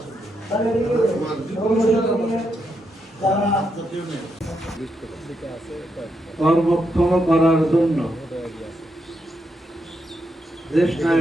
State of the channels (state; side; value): normal; both; correlation 0.82